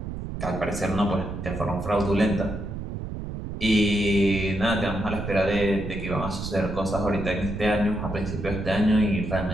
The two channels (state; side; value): noise; right; rumble, 7 dB below the sound